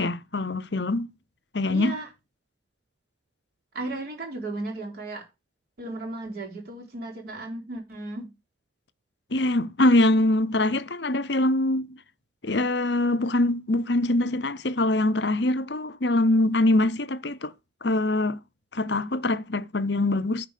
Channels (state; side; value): normal; both; correlation 0.54